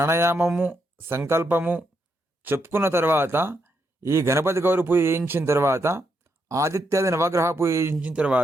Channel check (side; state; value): both; normal; correlation 0.80